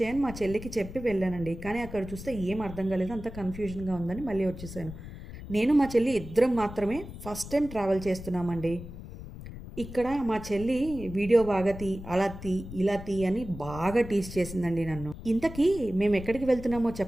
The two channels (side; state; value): left; noise; rumble, 12 dB below the sound